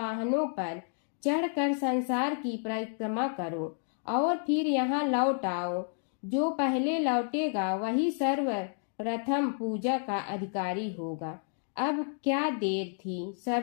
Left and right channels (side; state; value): right; silent; 57 dB below the other